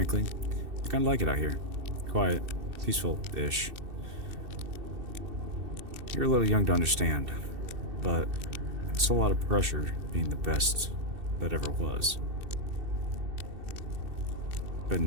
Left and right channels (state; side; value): late; left; 2.7 ms